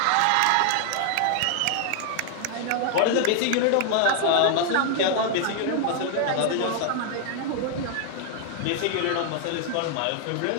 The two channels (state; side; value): different; both; correlation 0.00